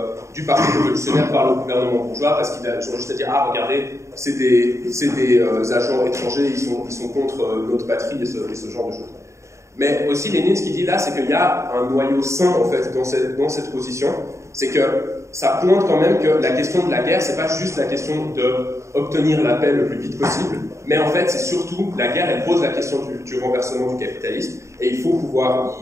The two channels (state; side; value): late; left; 0.14 ms